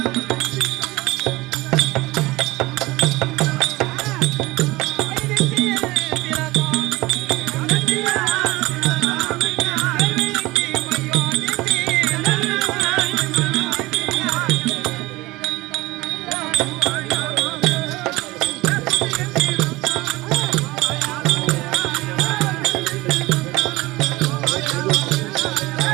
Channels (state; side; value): quieter; left; 20.6 dB